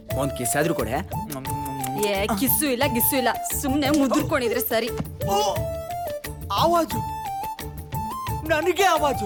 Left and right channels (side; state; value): both; identical; correlation 1.00